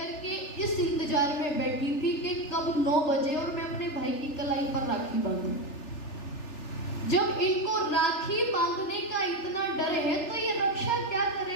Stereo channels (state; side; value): late; right; 3.4 ms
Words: के इस इंतजार में बैठी थी कि कब 9 बजे और मैं अपने भाई की कलाई पर राखी बांधूं। जब इनको राखी बांधने का इतना डर है तो ये रक्षा क्या